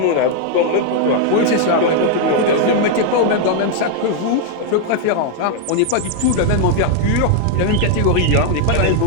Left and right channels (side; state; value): both; different; correlation 0.00